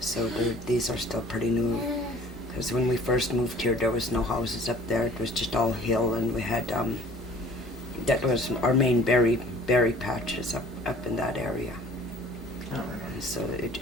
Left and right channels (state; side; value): normal; both; correlation 0.50